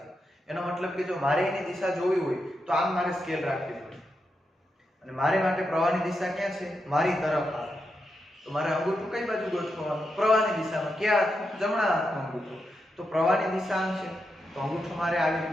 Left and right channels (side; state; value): both; normal; correlation 0.85